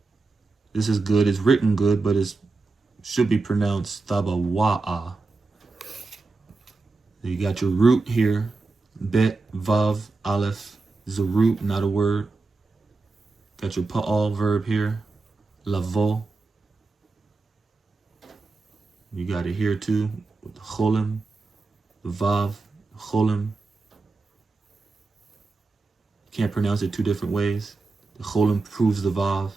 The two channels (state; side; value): quieter; left; 3.8 dB